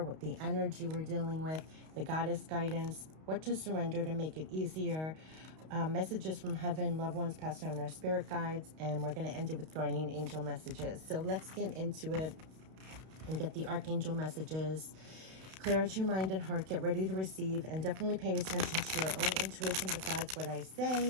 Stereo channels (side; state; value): left; late; 32 ms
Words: what the energy we're dealing with, the goddess guidance, what to surrender to make it easier, messages from heaven, loved ones passed on our spirit guides, and we're going to end it with guardian angel messages. So let's get into it and get the Archangel messages. Clear out your mind and heart, get ready to receive, and definitely pay attention to your own intuition besides what I